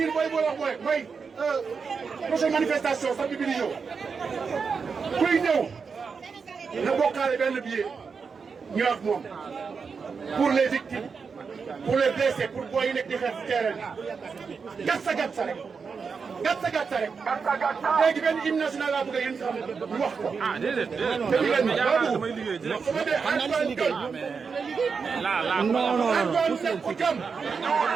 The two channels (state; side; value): quieter; left; 5.5 dB